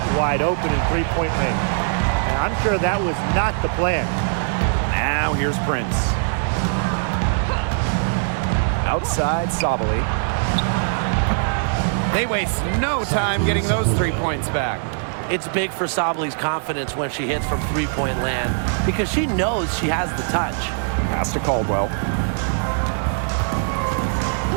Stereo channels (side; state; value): left; silent; digital silence